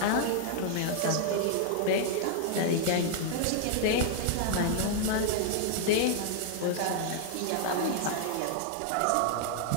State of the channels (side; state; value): both; different; correlation 0.00